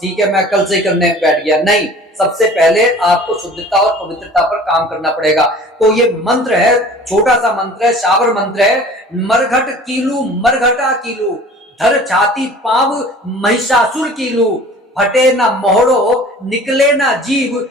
ठीक है मैं कल से करने बैठ गया। नहीं, सबसे पहले आपको शुद्धता और पवित्रता पर काम करना पड़ेगा। तो ये मंत्र है, छोटा सा मंत्र है, शाबर मंत्र है। मरघट कीलू मरघटा कीलू, धर छाती पाव महिषासुर कीलू, फटे ना मोहड़ो निकले ना जीव,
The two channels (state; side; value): normal; both; correlation 0.45